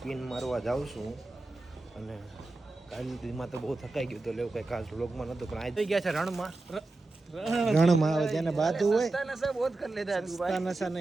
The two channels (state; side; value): quieter; left; 3.1 dB